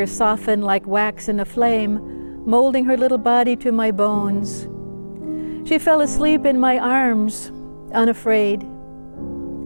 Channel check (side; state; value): both; inverted; correlation -1.00